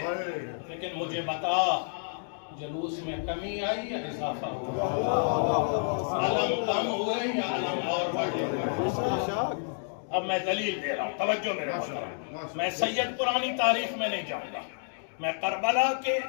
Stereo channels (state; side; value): silent; right; digital silence